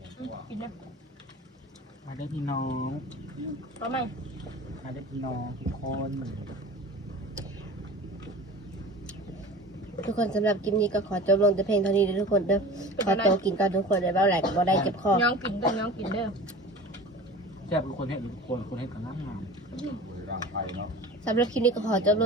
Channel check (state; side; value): normal; both; correlation 0.38